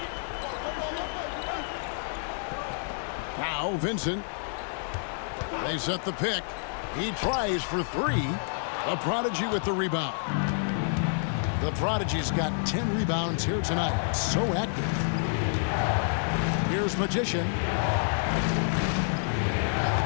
Now Vincent. They set the pick. He tries for 3. The prodigy with the rebound. The prodigy's got 10 rebounds here tonight. So active. Here's Magician.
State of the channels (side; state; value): right; silent; 55 dB below the other